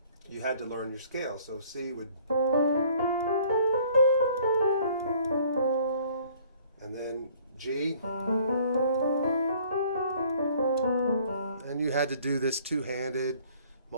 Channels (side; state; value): both; inverted; correlation -0.56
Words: you had to learn your scale. So C would... and then G, and you had to do this two-handed,